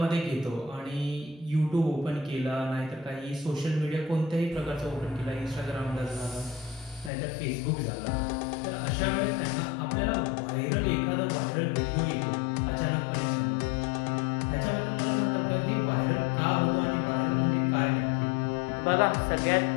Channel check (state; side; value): drops out; right; at 7.1 s